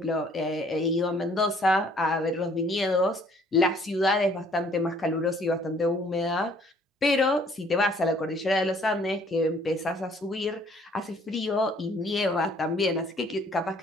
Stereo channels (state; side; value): normal; both; correlation 0.60